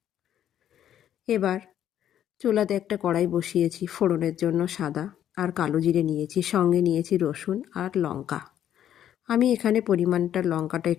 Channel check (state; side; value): quieter; right; 10.5 dB